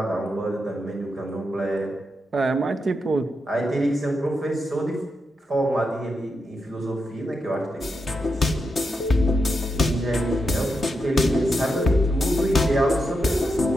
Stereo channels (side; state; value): both; normal; correlation 0.85